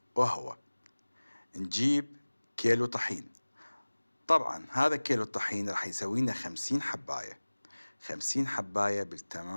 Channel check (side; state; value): both; inverted; correlation -1.00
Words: وهو نجيب كيلو طحين. طبعا هذا كيلو الطحين راح يسوي لنا 50 حباية، 50 حباية